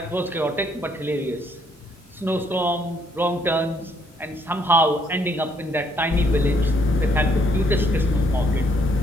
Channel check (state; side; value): normal; both; correlation 0.69